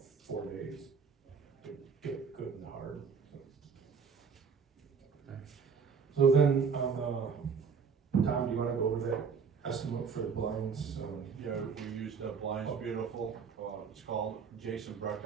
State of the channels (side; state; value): left; quieter; 5.9 dB